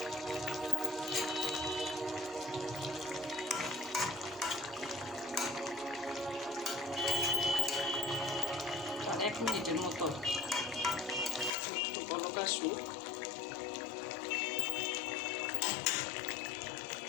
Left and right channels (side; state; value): right; drops out; at 11.5 s